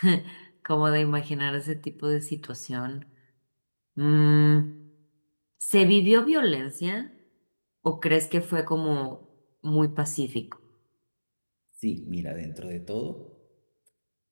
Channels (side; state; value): both; inverted; correlation -1.00